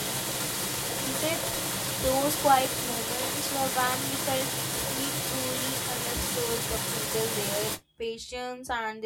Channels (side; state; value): both; identical; correlation 1.00